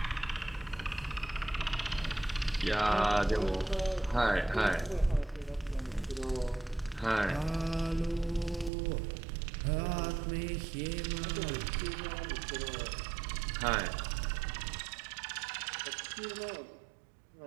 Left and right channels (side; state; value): left; drops out; at 8.7 s